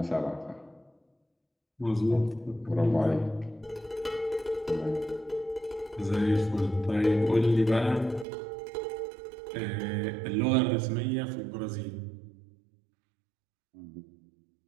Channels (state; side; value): drops out; left; at 8.2 s